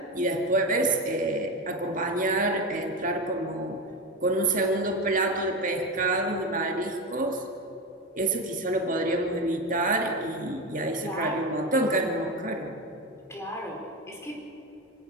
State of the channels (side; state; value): both; normal; correlation 0.18